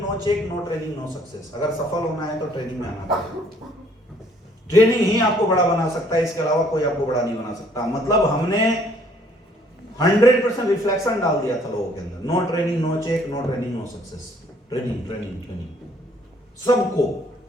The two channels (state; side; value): normal; both; correlation 0.62